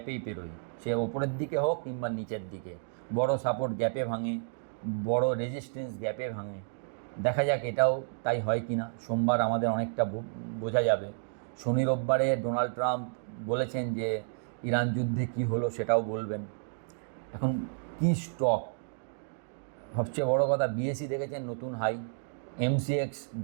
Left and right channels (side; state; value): left; silent; digital silence